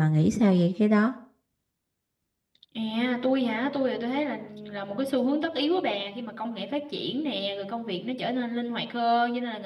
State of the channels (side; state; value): both; identical; correlation 1.00